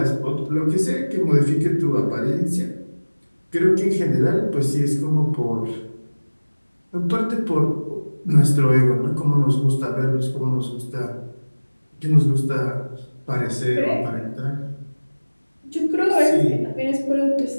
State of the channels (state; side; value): inverted; both; correlation -1.00